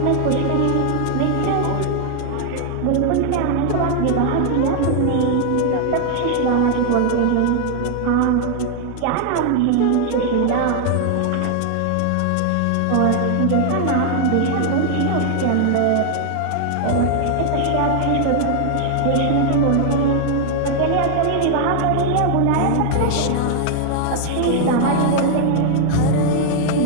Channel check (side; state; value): both; different; correlation 0.00